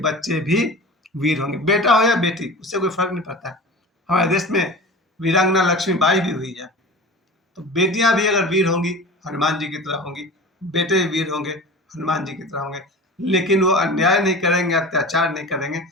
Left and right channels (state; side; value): normal; both; correlation 0.35